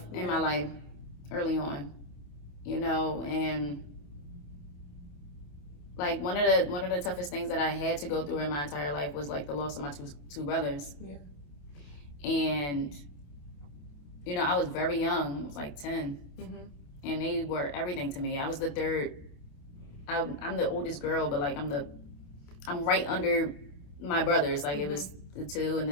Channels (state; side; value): late; right; 28 ms